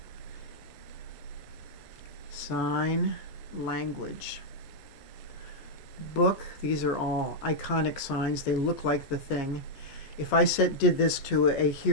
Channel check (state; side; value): late; right; 15 ms